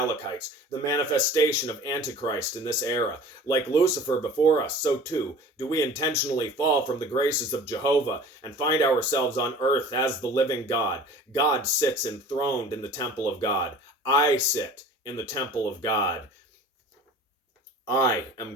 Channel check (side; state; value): both; normal; correlation 0.43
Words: the manifestation of Antichrist in this era. Like Lucifer before us, so too do we intentionally fall from the graces of Jehovah and find ourselves on earth as the living God. God sits enthroned in the temple of God. I sit in the temple of God. I am